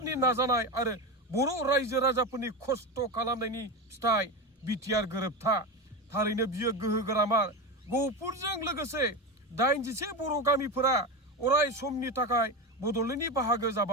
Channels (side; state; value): both; normal; correlation 0.19